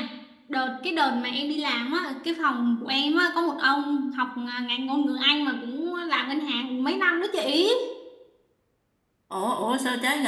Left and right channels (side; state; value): both; identical; correlation 1.00